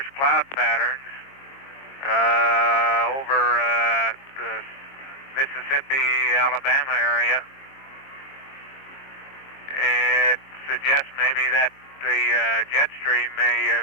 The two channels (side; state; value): right; late; 22 ms